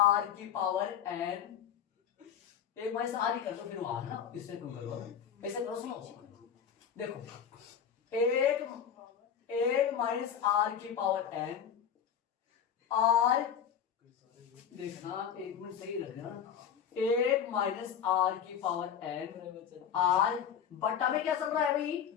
की पावर n, 1 माइनस r ही कर दो, फिर वहां ना, इससे क्यों करो, ऐसे करो, सुनो देखो, 1 माइनस r की पावर n, r देखना, एक मिनट सही रखना, 1 माइनस r की पावर n, r बट्टा में क्या चल रहा है भाई,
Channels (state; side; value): quieter; right; 8.4 dB